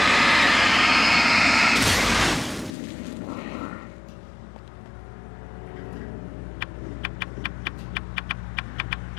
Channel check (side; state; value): right; drops out; at 2.7 s